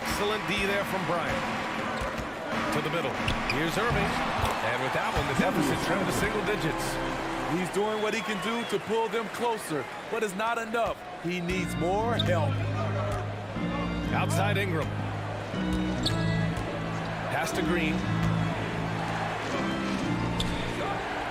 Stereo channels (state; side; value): identical; both; correlation 1.00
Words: D there from Bryant. To the middle. Here's Irving. And with that one, the deficit trimmed to single digits. He's doing what he can do to pull them closer, but it's not enough. He needs more help. Outside Ingram. Pass to Green.